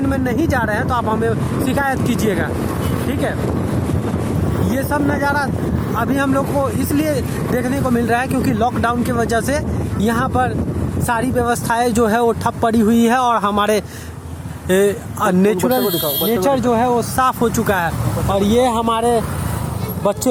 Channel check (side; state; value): both; identical; correlation 1.00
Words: में नहीं जा रहे हैं तो आप हमें शिकायत कीजिएगा, ठीक है। ये सब नज़ारा अभी हम लोग को इसलिए देखने को मिल रहा है क्योंकि लॉकडाउन की वजह से यहाँ पर सारी व्यवस्थाएं जो है वो ठप पड़ी हुई है और हमारे नेचर जो है वो साफ हो चुका है। और ये हमारे